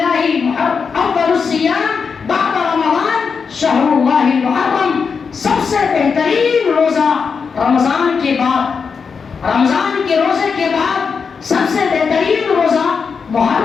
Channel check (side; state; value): right; quieter; 5.7 dB